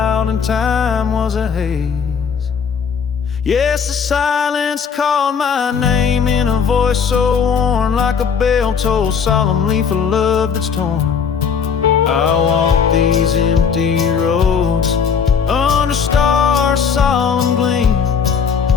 and time was a haze. Yes, the silence called my name in a voice so worn, like a bell tolled solemnly for love that's torn. I walk these empty roads under stars' solemn gleam,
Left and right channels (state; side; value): quieter; right; 6.5 dB